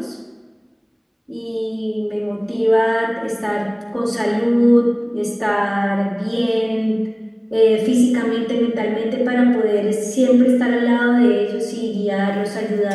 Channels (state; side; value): identical; both; correlation 1.00